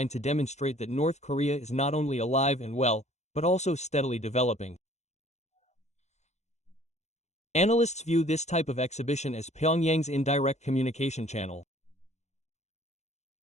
to demonstrate that North Korea is not only alive and well, but also steadily developing. Analysts view this type of exhibition as Pyongyang's indirect communication channel.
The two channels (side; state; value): right; late; 0.33 ms